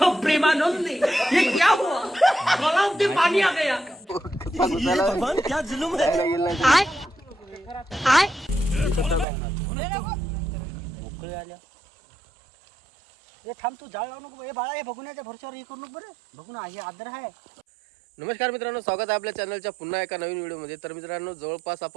प्रेमानंद, ये क्या हुआ? गलाव से पानी आ गया। भगवान क्या जुलूम है? हे थांब तू जाळ लावू नको हे बाळा हे बघुण्याच्या भरशावर हे करू नको बरं बघू ना हे आदर आहे. नमस्कार मित्रांनो, स्वागत आहे आपल्या चॅनलच्या पुन्हा एका नवीन व्हिडिओमध्ये. तर मित्रांनो, जवळपास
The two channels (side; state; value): left; drops out; at 9.2 s